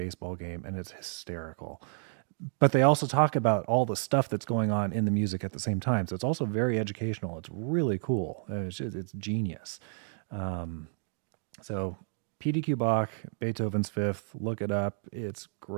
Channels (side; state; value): left; silent; digital silence